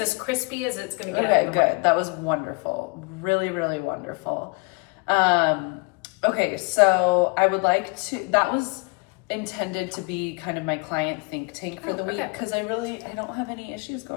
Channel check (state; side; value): quieter; right; 30.8 dB